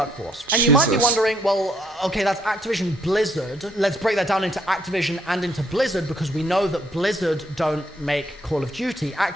And you might be wondering, well, okay, that's Activision Blizzard. Let's break that down into Activision and into Blizzard, because we know that Blizzard don't make Call of Duty,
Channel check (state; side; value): normal; both; correlation 0.70